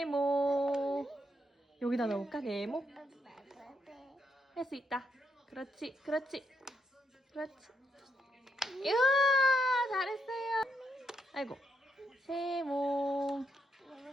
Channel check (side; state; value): both; normal; correlation 0.79